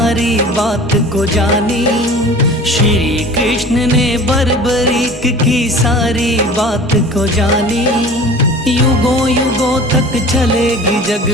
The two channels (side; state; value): both; normal; correlation 0.42